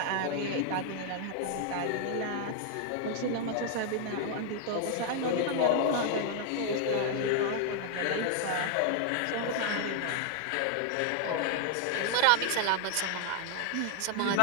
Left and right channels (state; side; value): different; both; correlation 0.00